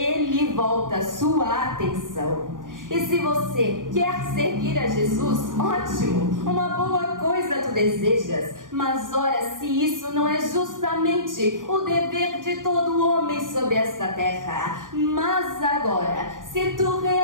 volta sua atenção. E se você quer seguir a Jesus, ótimo, uma boa coisa tu desejas. Mas ora, se isso não é justamente o dever de todo homem sobre esta terra. Mas agora, se tu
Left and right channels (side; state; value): left; late; 0.89 ms